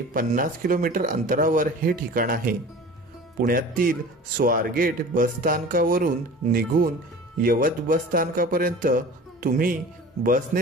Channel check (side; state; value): both; normal; correlation 0.40